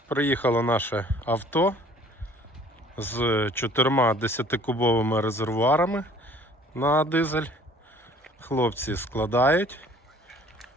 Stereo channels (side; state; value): both; normal; correlation 0.53